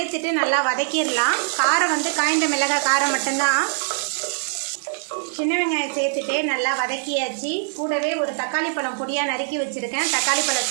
நல்லா வதக்கிடலாம் காரம் வந்து காய்ந்த மிளகாய் காரம் மட்டும்தான் சின்ன வெங்காயம் சேர்த்துட்டு நல்லா வதக்கியாச்சு கூடவே ஒரு தக்காளி பழம் பொடியாக நறுக்கி வச்சுருக்கேன் தக்காளி பழம்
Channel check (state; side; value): silent; left; digital silence